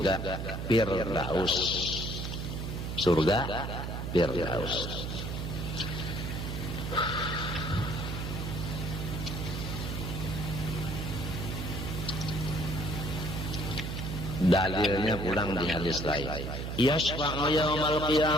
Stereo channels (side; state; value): right; noise; hum, 4 dB below the sound